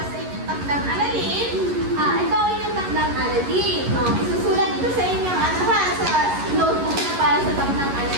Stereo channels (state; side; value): late; left; 11 ms